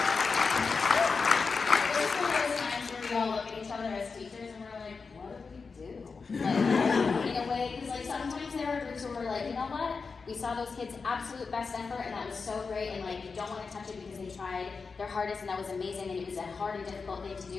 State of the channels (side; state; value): right; quieter; 4.8 dB